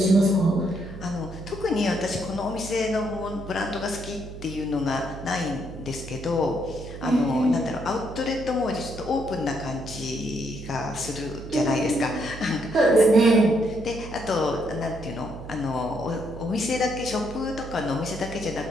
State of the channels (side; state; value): right; noise; hum, 12 dB below the sound